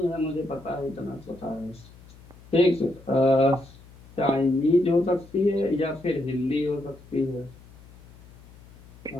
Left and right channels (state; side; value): noise; left; hum, 22 dB below the sound